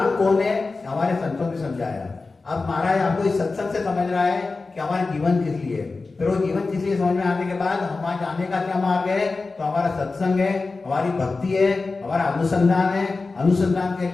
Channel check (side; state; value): right; quieter; 3.8 dB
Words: कौन है हमारे संतों ने समझाया। अब महाराज आपको इस सत्संग से समझ रहा है कि हमारा जीवन किस लिए है। फिर वो जीवन किस लिए समझ में आने के बाद हमारे जाने का क्या मार्ग है, तो हमारा सत्संग है, हमारी भक्ति है, हमारा अनुसंधान है। अनुसंधान के